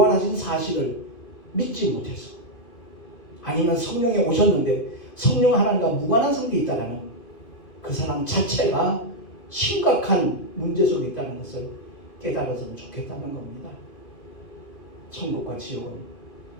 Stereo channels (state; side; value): late; right; 2.5 ms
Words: 사실을 믿지 못해서 아니면 성령이 오셨는데 성령 하나님과 무관한 상태에 있다는 그 사람 자체가 심각한 문제 속에 있다는 것을 깨달았으면 좋겠다는 겁니다. 천국과 지옥은